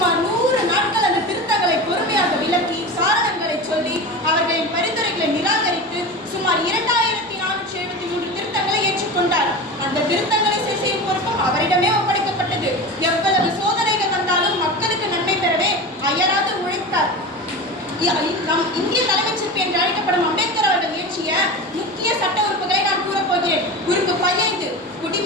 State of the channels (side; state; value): both; normal; correlation 0.29